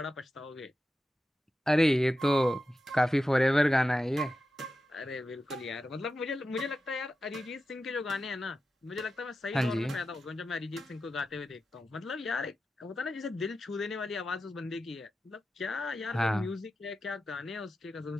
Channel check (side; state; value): both; normal; correlation 0.91